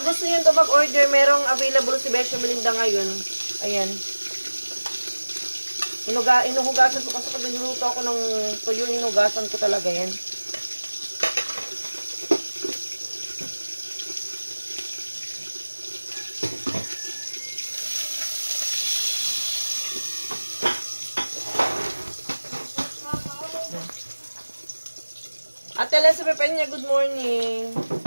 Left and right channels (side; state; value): both; inverted; correlation -1.00